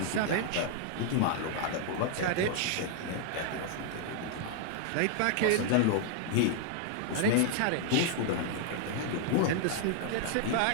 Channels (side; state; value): both; different; correlation 0.00